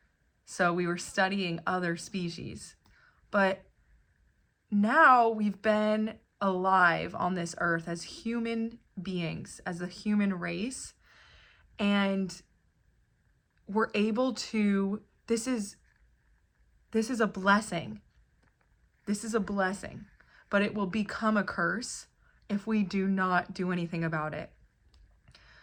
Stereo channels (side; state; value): both; identical; correlation 1.00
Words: So we were studying other species. But now we've been alive on this earth as human beings, as a human race, and we're able to, this is a blessing. This is a blessing, but it will become a curse if we do not do anything about it.